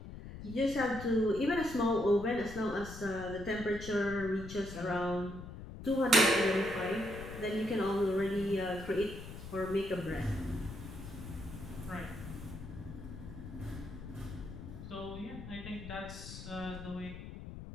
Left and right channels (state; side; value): noise; left; rumble, 11 dB below the sound